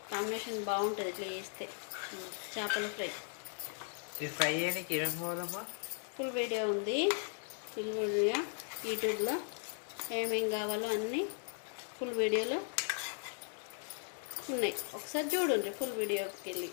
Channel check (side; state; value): right; silent; 53 dB below the other